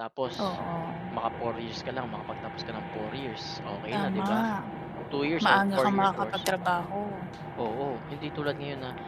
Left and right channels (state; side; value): identical; both; correlation 1.00